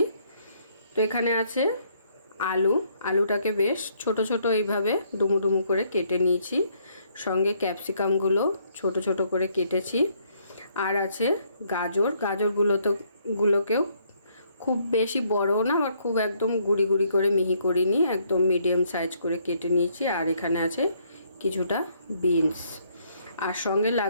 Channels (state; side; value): inverted; both; correlation -0.69